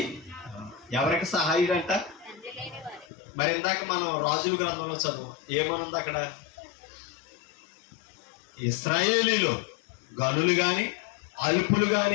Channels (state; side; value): drops out; right; at 3.1 s